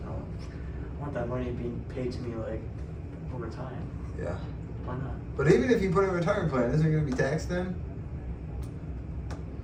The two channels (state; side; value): identical; both; correlation 1.00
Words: want that money being paid to me like over time. Yeah. Why not? But even if you put in a retirement plan, isn't it going to be taxed then?